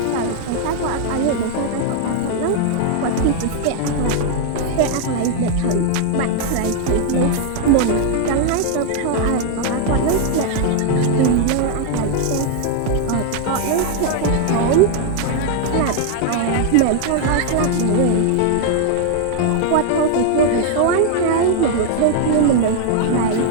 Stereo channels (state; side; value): different; both; correlation 0.00